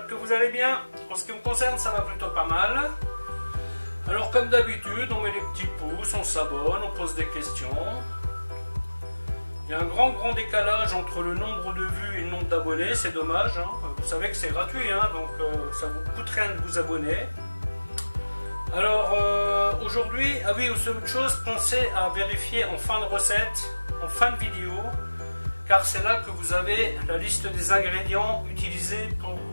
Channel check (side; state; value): both; inverted; correlation -1.00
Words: que vous allez bien. En ce qui me concerne, ça va plutôt pas mal. Alors comme d'habitude, on met les petits pouces, on s'abonne, on pose des questions. Il y a un grand décalage entre le nombre de vues et le nombre d'abonnés, c'est dommage. Hein. Vous savez que c'est gratuit, hein, donc ça vous coûte rien de vous abonner. Alors aujourd'hui, ah oui, aussi autre chose, pensez à vérifier en fin de recette, en fin de vidéo, car c'est là que vous avez la liste des ingrédients utilisés pour